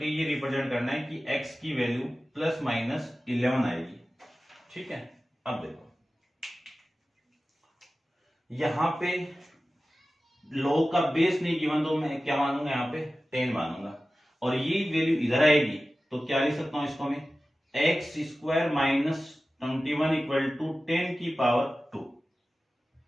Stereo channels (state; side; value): normal; both; correlation 0.96